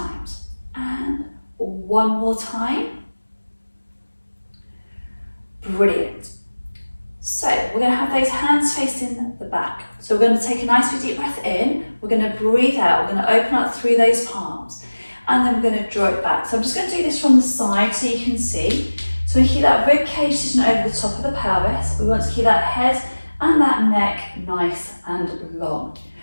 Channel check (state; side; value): inverted; both; correlation -1.00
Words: And 1 more time. Brilliant. So we're going to have those hands facing the back. So we're going to take a nice big deep breath in. We're going to breathe out. We're going to open up through those palms. And then we're going to draw it back. So I'm just going to do this from the side so you can see. So we keep that rib cage sitting over the top of the pelvis. We want to keep that head and that neck nice and long.